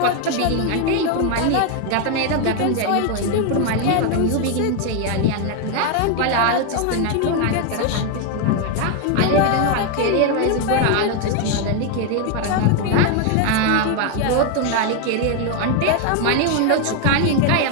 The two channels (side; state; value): both; different; correlation 0.01